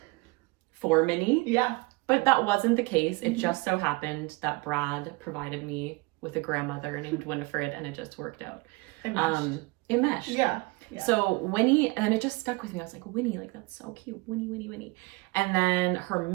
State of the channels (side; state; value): left; quieter; 25.8 dB